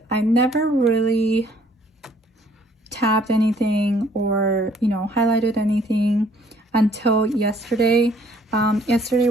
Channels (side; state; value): both; normal; correlation 0.61